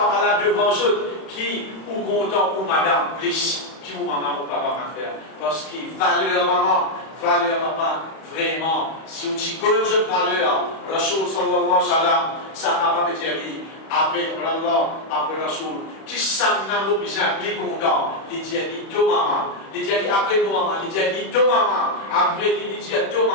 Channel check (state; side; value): late; right; 31 ms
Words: là devant eux qui, ou content, ou madame, plus. Qui ou maman ou papa va faire. Parce qu'il valeur maman, valeur papa. Vraiment, si on dit que je valeur, Rasul sallallahu alayhi wa sallam, Sahaba Betjali, après Allah, après Rasul, qui s'en a besoin, les contents, les dit deux mamans, les dit après deux mamans, les dit deux mamans, après les dit deux